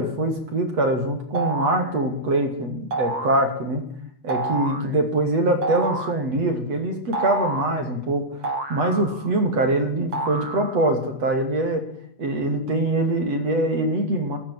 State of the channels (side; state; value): left; late; 8.1 ms